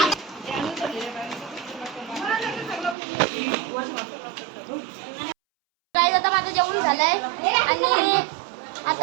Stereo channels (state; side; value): drops out; left; at 3.0 s